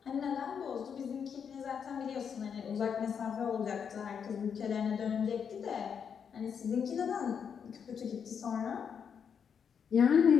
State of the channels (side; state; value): right; quieter; 7.1 dB